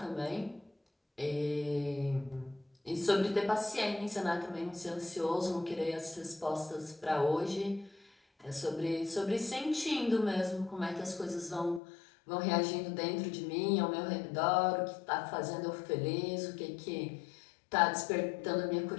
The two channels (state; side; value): drops out; right; at 11.8 s